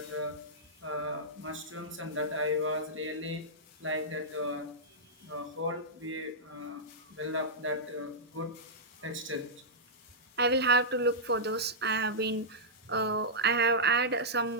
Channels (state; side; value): normal; both; correlation -0.12